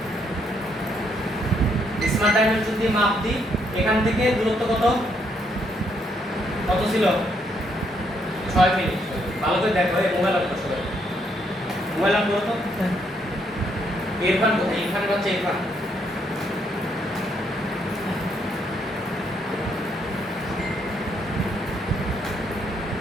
স্মার্ট ডাইমেনশন দিয়ে মাপ দিই। এখান থেকে দূরত্ব কত ছিল? 6 মিনিট। ভালো করে দেখো, এই মোবাইল অন করো, মোবাইল অন করো তো। ইরফান কোথায়? ইরফান হচ্ছে ইরফান।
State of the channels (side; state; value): both; normal; correlation 0.73